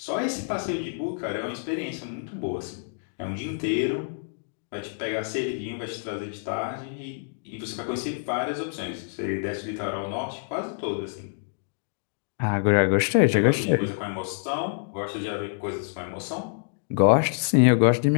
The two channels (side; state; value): right; silent; digital silence